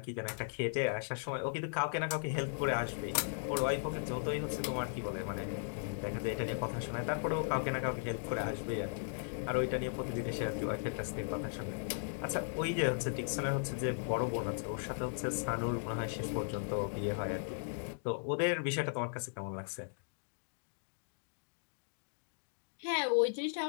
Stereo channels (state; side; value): silent; right; digital silence